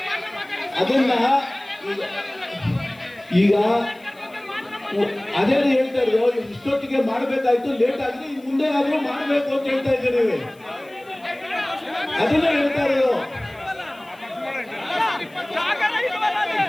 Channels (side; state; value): left; noise; hiss, 29 dB below the sound